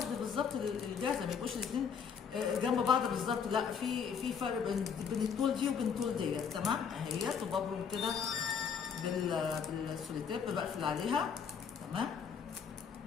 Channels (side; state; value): right; quieter; 6.8 dB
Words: بالظبط الجاهزه، ما يبقوش الاثنين جنب بعض بالظبط، لا في فرق بين الطول دي وبين الطول ديت. تمام اهيت، وببرم كده بالسوليتيب، بقفل عليها. تمام